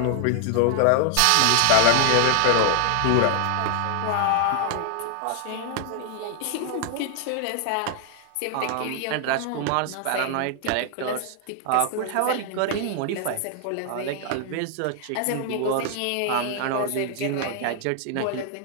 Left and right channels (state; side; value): different; both; correlation 0.00